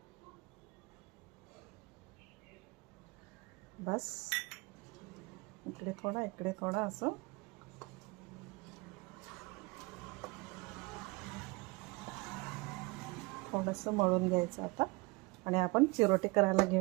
बस इकडे थोडा इकडे थोडा असं थोडंसं मळून घ्यायचं आता. आणि आपण चिरोटे करायला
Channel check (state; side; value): quieter; left; 26.2 dB